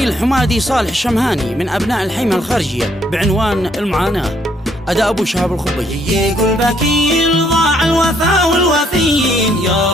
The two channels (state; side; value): normal; both; correlation 0.69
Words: حمادي صالح الشمهاني من أبناء الحيمة الخارجية بعنوان المعاناة. أداء أبو شهاب الخبيج. يقول بكيل ضاع الوفا والوفيين، يا